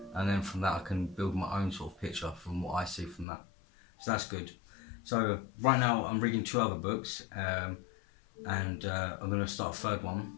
and then from that I can build my own sort of picture from what I see from that. So that's good. So right now I'm reading 2 other books, and I'm going to start a 3rd one.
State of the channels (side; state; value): right; drops out; at 3.2 s